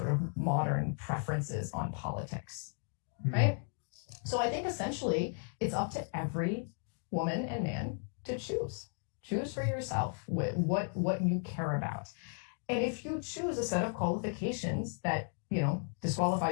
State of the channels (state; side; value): silent; right; 54 dB below the other